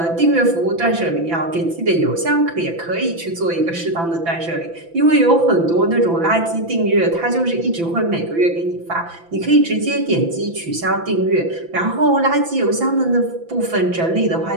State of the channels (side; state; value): left; late; 5.9 ms